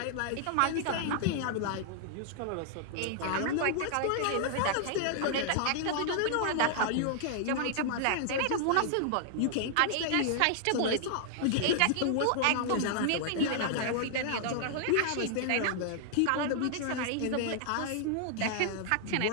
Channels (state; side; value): different; both; correlation -0.01